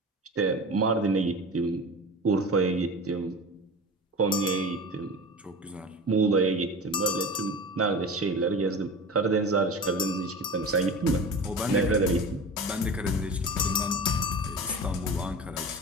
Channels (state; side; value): normal; both; correlation 0.32